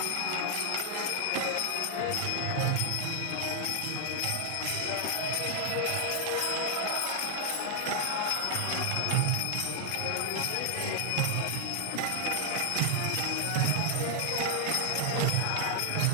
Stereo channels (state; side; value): different; both; correlation 0.00